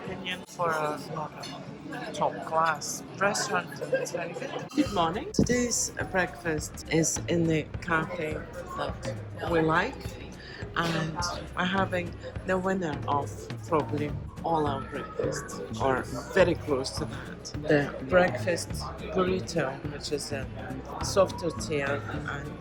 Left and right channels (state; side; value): identical; both; correlation 1.00